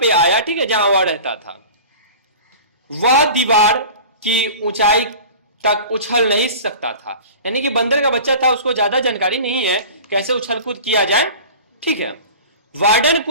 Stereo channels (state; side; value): inverted; both; correlation -0.39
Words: आया। ठीक है, जहां वह रहता था। वह दीवार की ऊंचाई तक उछल नहीं सकता था, यानी कि बंदर का बच्चा था, उसको ज्यादा जानकारी नहीं है कैसे उछल कूद किया जाए। ठीक है, वार्डन,